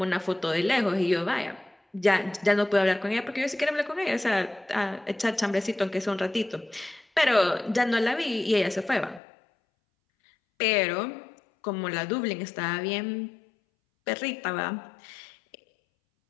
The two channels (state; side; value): drops out; right; at 9.2 s